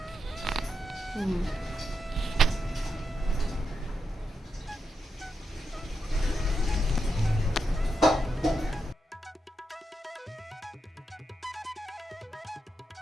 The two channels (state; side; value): normal; both; correlation 0.85